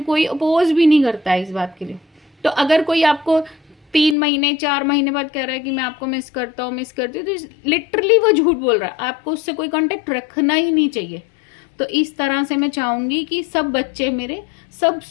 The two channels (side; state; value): right; drops out; at 4.2 s